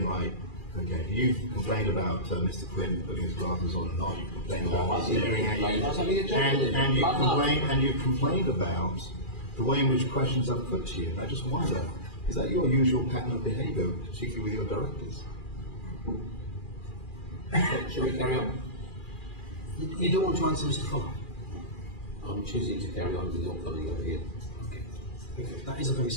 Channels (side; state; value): right; late; 2.4 ms